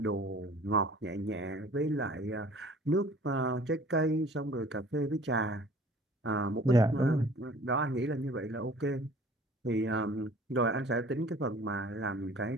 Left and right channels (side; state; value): both; normal; correlation 0.49